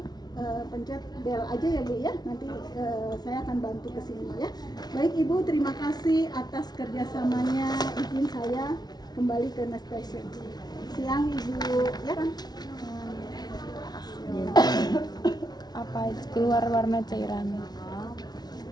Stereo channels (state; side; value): late; right; 0.19 ms